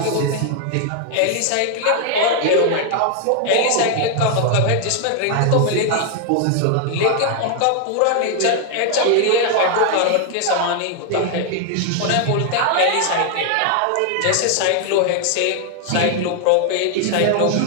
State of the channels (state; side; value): different; both; correlation 0.00